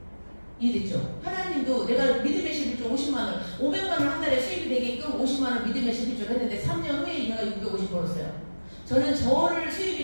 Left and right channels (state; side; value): inverted; both; correlation -1.00